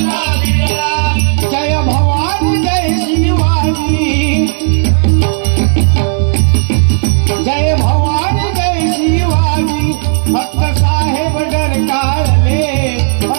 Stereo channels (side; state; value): left; silent; digital silence